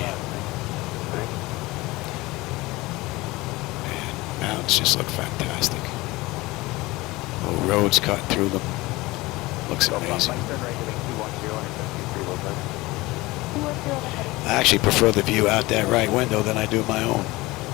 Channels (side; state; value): right; quieter; 20.7 dB